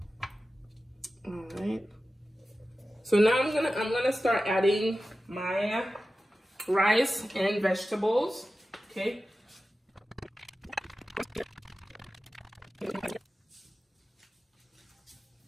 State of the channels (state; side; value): normal; both; correlation 0.94